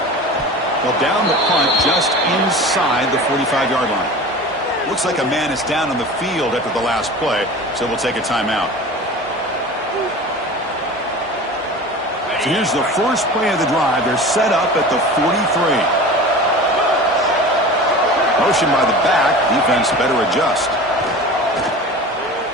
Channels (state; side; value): normal; both; correlation 0.36